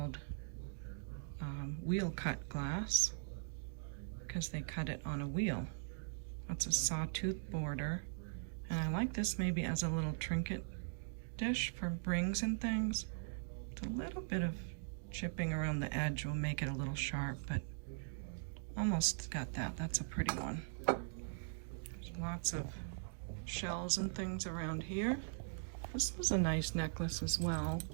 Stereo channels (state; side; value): silent; left; digital silence